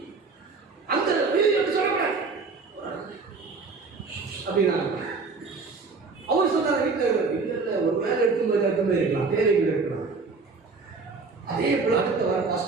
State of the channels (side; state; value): left; quieter; 4.3 dB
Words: அந்த வீடியோ சொல்றேன் அப்படின்னா அவர் சொன்னார், வீட்டில் ஒரு வேலை எடுத்து இருக்கலாம், தேவைகள் இருக்கலாம். அதே போல அடுத்த வாரம்